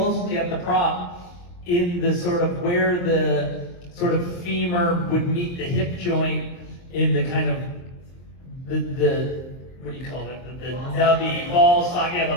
at the prop, in the sort of where the sort of femur would meet the hip joint, in the kind of the what do you call that? The nubby ball socket, yeah,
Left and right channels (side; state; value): right; late; 23 ms